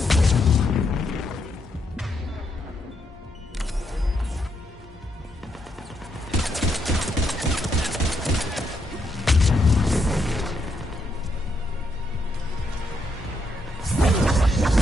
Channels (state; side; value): normal; both; correlation 0.78